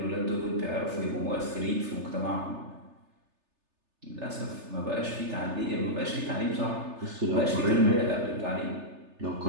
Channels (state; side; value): late; left; 3.3 ms